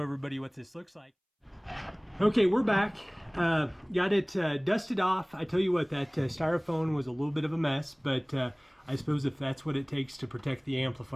what this looks like. Okay, we're back. Got it dusted off. I tell you what, that styrofoam was a little bit of a mess, but I suppose if that's what it takes to protect the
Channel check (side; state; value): both; identical; correlation 1.00